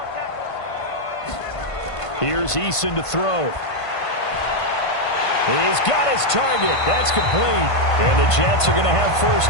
Here's Eason to throw. He's got his target. That's complete. And the Jets are going to have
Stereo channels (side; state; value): right; late; 1.5 ms